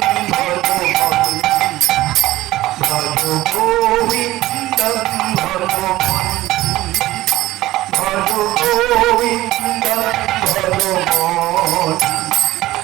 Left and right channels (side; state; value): left; quieter; 16.5 dB